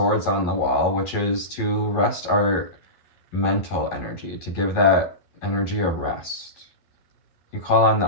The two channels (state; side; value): late; right; 11 ms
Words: on the wall, which is to rest our mental energy, to give that energy a rest. You call on the